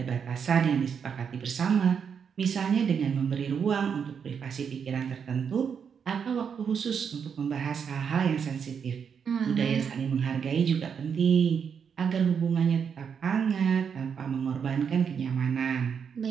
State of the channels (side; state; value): left; quieter; 6.9 dB